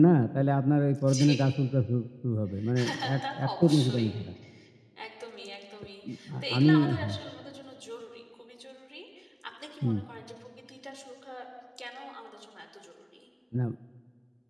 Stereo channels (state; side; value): identical; both; correlation 1.00